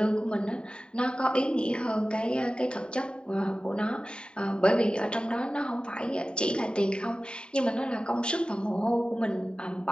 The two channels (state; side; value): late; right; 0.050 ms